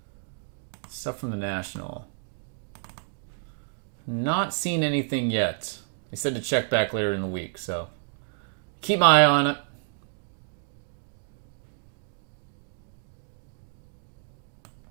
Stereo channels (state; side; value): silent; left; digital silence